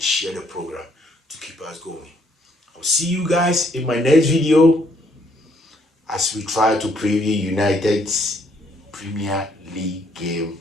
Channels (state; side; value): normal; both; correlation 0.68